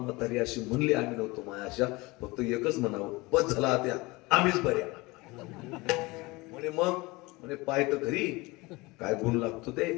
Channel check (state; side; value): quieter; right; 23.2 dB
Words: अशी म्हणली आम्ही नव्हतो मायाशा, फक्त एकच म्हणावं, बस झाला त्या आम्हीच बऱ्या. म्हणे मग म्हणे पाय तर घरी काय गुण लागतो ते.